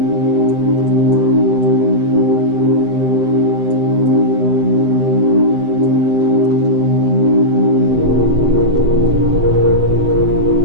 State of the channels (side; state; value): left; late; 7.8 ms